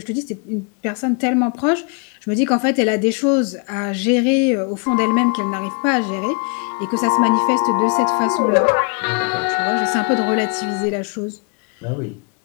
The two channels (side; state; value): right; quieter; 36.1 dB